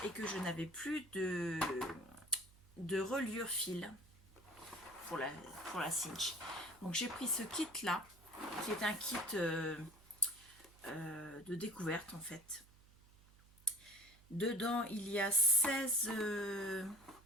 et que je n'avais plus de reliure fil pour la cinch. Donc j'ai pris ce kit là, qui est un kit de découverte en fait. Dedans il y a 16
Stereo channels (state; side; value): noise; right; hum, 25 dB below the sound